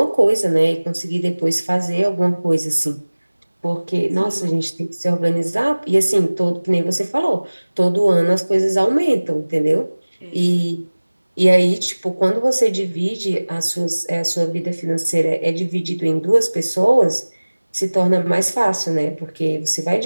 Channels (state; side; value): inverted; both; correlation -1.00